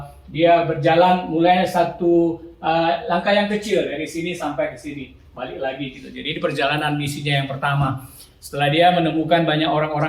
dia berjalan mulai satu langkah yang kecil dari sini sampai ke sini, balik lagi gitu. Jadi ini perjalanan misinya yang pertama. Setelah dia menemukan banyak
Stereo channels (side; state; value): both; identical; correlation 1.00